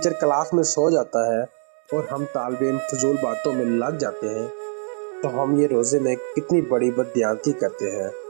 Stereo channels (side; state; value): left; silent; digital silence